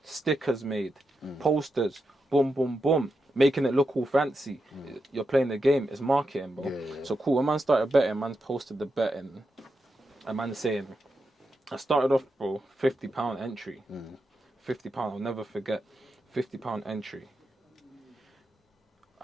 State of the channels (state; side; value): normal; both; correlation 0.86